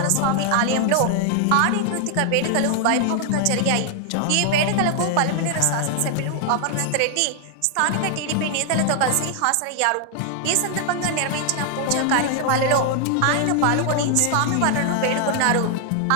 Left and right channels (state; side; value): different; both; correlation 0.00